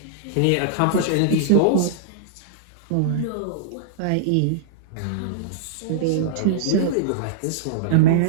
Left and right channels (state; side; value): different; both; correlation -0.02